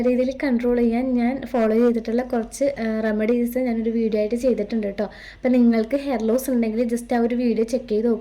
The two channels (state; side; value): identical; both; correlation 1.00